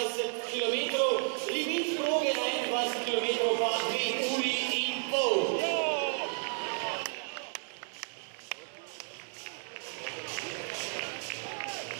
km. Limit proge na 21 km pa 2 uri in pol.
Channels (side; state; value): left; silent; 56 dB below the other